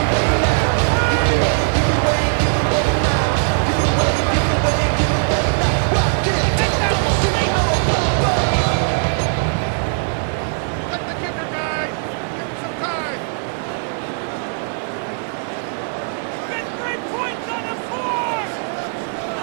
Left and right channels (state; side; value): silent; left; digital silence